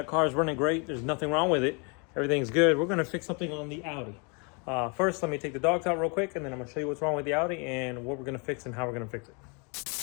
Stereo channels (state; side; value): quieter; right; 33.6 dB